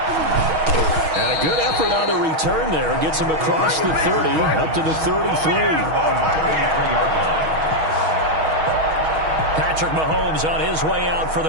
And a good effort on the return there. Gets him across the 30, up to the 33. Patrick Mahomes on his way out for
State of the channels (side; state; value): left; late; 6.3 ms